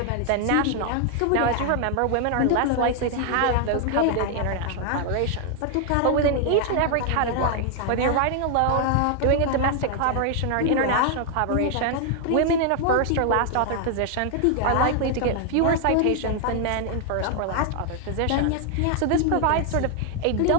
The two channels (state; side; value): different; both; correlation 0.00